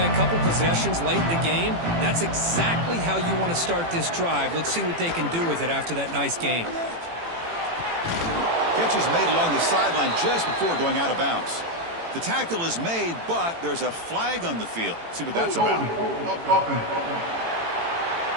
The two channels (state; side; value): late; left; 18 ms